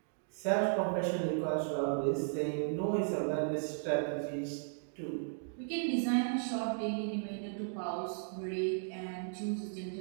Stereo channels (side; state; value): left; silent; digital silence